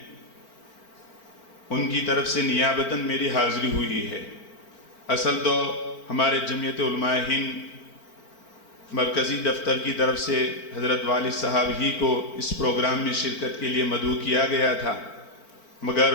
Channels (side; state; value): right; late; 4.4 ms